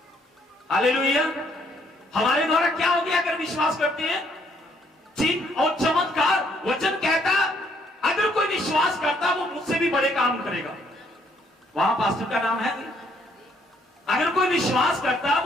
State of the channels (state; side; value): normal; both; correlation 0.68